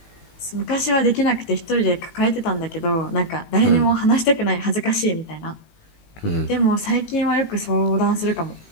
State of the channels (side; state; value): right; late; 18 ms